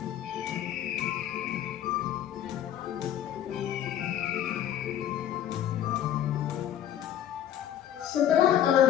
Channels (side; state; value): right; quieter; 10.8 dB